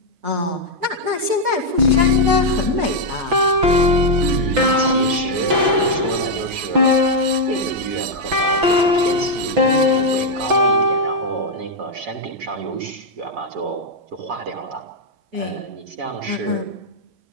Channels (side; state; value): left; late; 6.0 ms